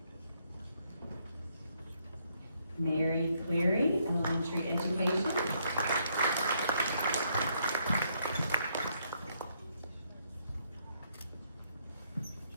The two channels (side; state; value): both; inverted; correlation -0.72